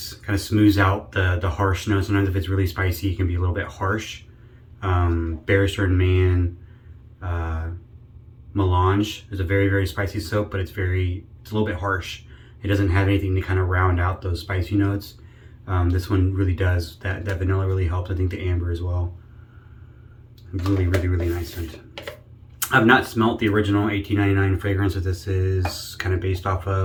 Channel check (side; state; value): both; identical; correlation 1.00